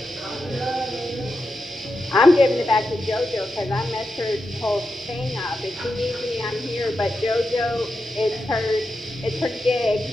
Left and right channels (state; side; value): normal; both; correlation 0.88